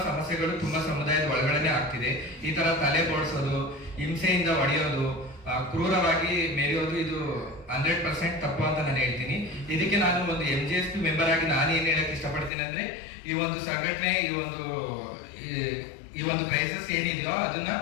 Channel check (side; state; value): right; drops out; at 12.5 s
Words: ಸಮಸ್ಯೆಗಳು ತುಂಬಾ ಸಮುದಾಯದ ಒಳಗಡೆನೆ ಆಗ್ತಿದೆ. ಈ ತರ ತಲೆ ಬೋಡ್ಸೋದು, ಹಿಂಸೆಯಿಂದ ಹೊಡೆಯೋದು, ಕ್ರೂರವಾಗಿ ಮೆರೆಯೋದು, ಇದು 100% ತಪ್ಪು ಅಂತ ನಾನು ಹೇಳ್ತೀನಿ. ಇದಕ್ಕೆ ನಾನು ಒಂದು MGSP ಮೆಂಬರ್ ಆಗಿ ನಾನು ಏನ್ ಹೇಳಕ್ ಇಷ್ಟಪಡ್ತೀನಿ ಅಂದ್ರೆ, ಈ ಒಂದು ಸಂಘಟನೆ, ಈ ಒಂದು ಕ್ರೈಸಿಸ್ ಏನಿದೆಯೋ ಅದನ್ನ